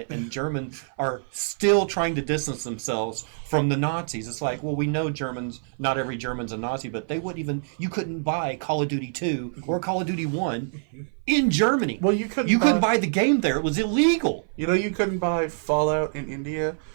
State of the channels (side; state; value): left; silent; 56 dB below the other